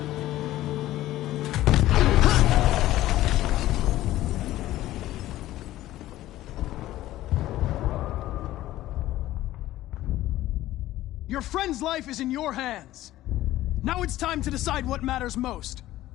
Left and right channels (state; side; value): quieter; right; 15.0 dB